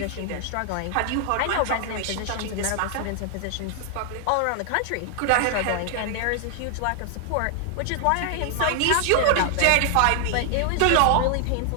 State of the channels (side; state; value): both; different; correlation 0.00